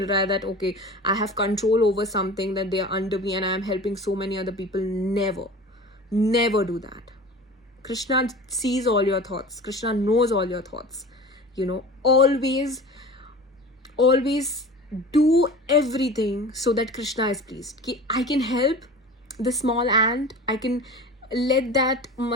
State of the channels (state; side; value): normal; both; correlation 0.37